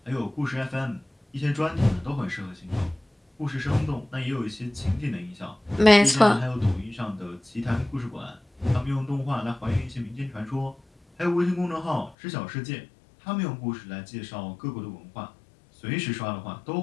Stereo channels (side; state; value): right; drops out; at 12.2 s